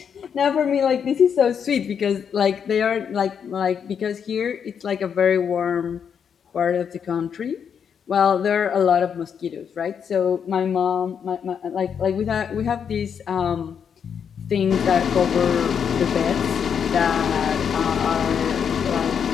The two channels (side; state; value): right; quieter; 7.4 dB